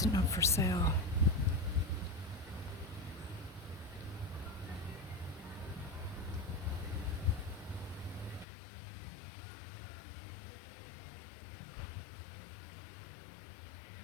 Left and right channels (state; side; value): drops out; right; at 8.5 s